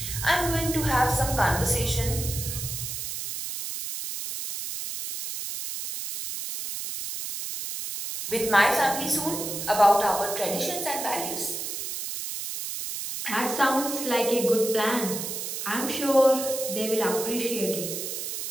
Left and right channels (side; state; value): right; noise; hiss, 5 dB below the sound